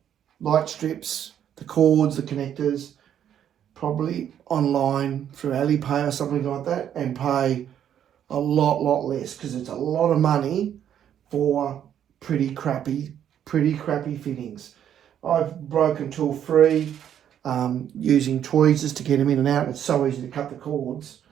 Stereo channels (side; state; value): left; quieter; 9.8 dB